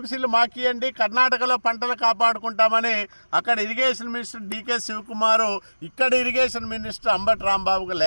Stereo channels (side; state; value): both; inverted; correlation -1.00